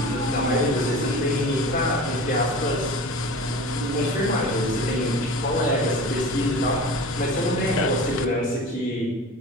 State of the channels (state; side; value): normal; both; correlation 0.35